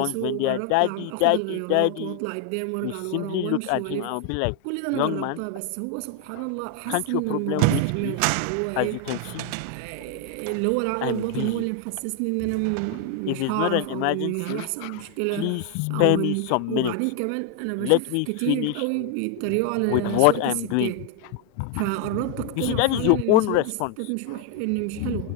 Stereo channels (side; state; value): both; different; correlation 0.00